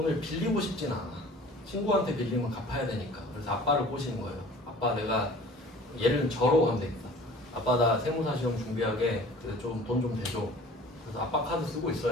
빌리고 싶진 않아. 친구한테 빌리면 갚아야 되니까. 그래서 아빠를 꼬시는 거예요. 아빠 내가 얘를 저로 하면 되겠다. 아빠 나 세무사 시험 준비하게 좀 돈 좀 대줘. 그래서 아빠 카드 쓰고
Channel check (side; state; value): both; normal; correlation 0.46